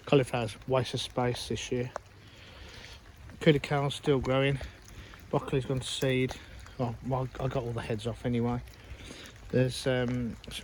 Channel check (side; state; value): both; identical; correlation 1.00